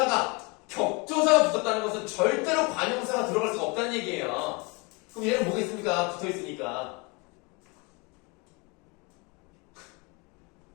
격조사가 붙었다는 것은 절대로 관형사가 들어갈 수가 없다는 얘기예요. 그럼 얘는 뭐겠습니까? 붙어있으니까.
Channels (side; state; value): right; quieter; 29.2 dB